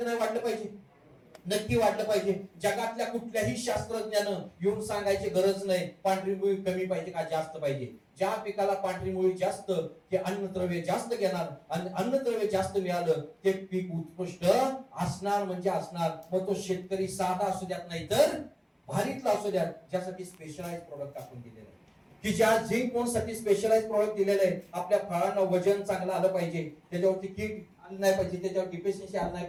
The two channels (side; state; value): both; identical; correlation 1.00